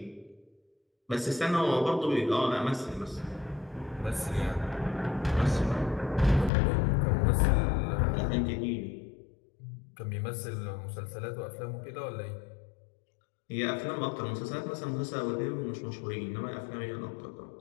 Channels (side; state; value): right; drops out; at 6.5 s